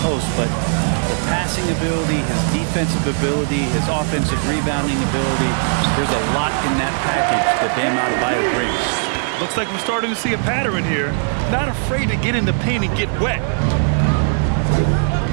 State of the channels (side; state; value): left; silent; 63 dB below the other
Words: post, but the passing ability, his defensive ability, his offensive rebounding ability, there's a lot in that package that Bam Adebayo brings. Looks like we're starting to see a pattern here. Not afraid to get in the paint and get wet.